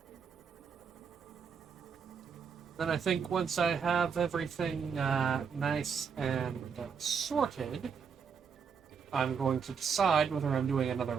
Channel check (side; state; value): left; quieter; 6.4 dB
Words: Then I think once I have everything nice and sorted, I'm going to decide whether I'm doing another